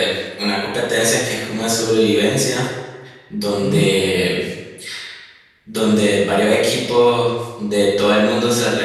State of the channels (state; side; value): identical; both; correlation 1.00